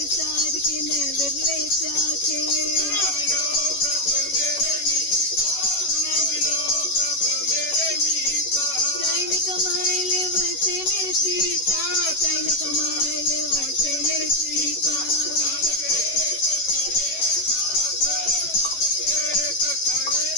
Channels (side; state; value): right; late; 11 ms